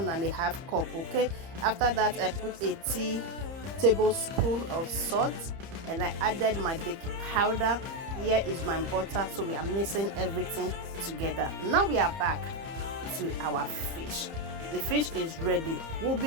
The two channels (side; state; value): left; late; 30 ms